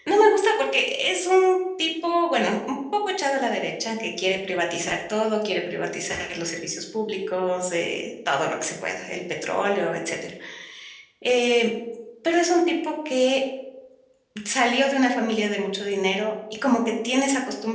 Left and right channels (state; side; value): identical; both; correlation 1.00